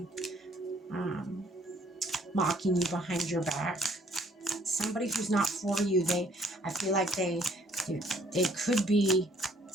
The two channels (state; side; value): normal; both; correlation 0.61